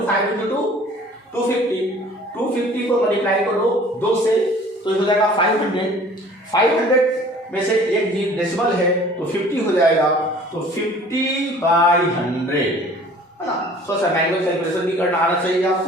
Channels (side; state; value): both; normal; correlation 0.49